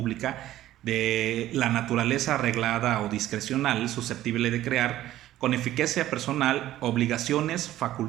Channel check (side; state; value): left; quieter; 14.0 dB